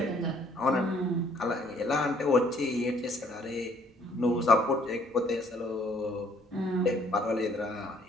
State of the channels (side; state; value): both; normal; correlation 0.62